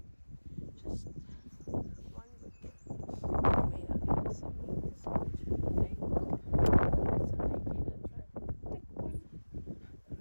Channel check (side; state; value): both; inverted; correlation -1.00